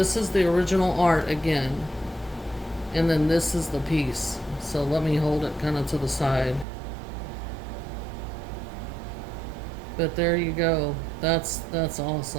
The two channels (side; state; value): left; drops out; at 6.7 s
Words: is the original art again. And then this is the piece. So let me hold it kind of to the side. But there you go. That's